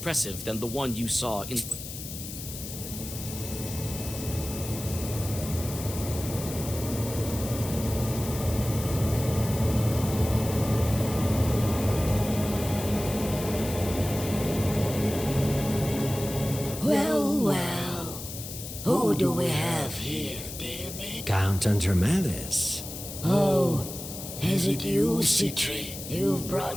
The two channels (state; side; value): noise; left; hiss, 10 dB below the sound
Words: than the one you saw in. Well, who do we have here, dear me? Count Andromedas. Oh, is it you, Citri? You've